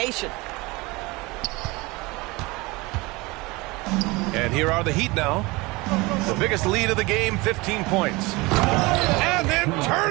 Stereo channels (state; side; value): quieter; left; 23.5 dB